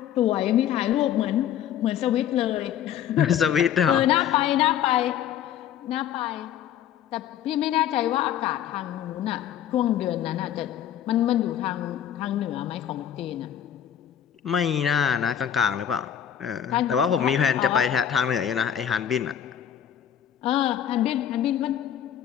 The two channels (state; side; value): quieter; right; 10.0 dB